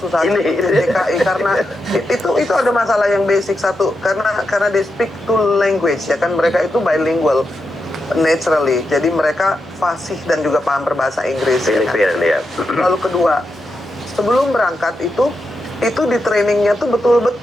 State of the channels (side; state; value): both; normal; correlation 0.86